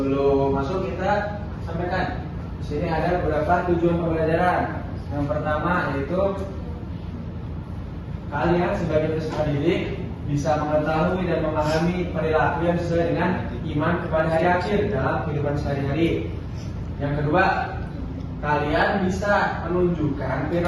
masuk kita sampaikan. Di sini ada beberapa tujuan pembelajaran. Yang pertama yaitu kalian sebagai peserta didik bisa mengetahui dan memahami perilaku yang sesuai dengan iman kepada hari akhir dalam kehidupan sehari-hari. Yang kedua, kalian bisa menunjukkan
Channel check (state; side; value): identical; both; correlation 1.00